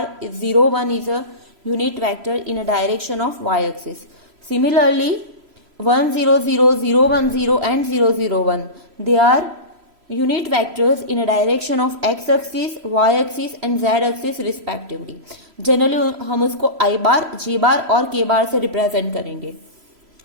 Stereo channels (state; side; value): late; left; 3.0 ms